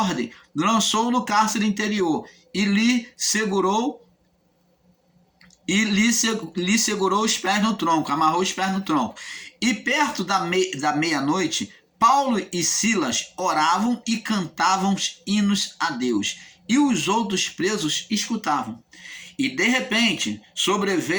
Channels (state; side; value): identical; both; correlation 1.00